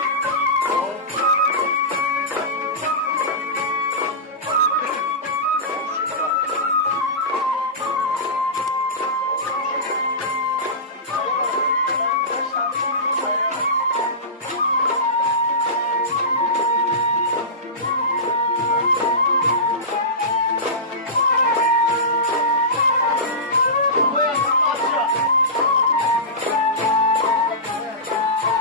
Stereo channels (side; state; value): both; normal; correlation -0.19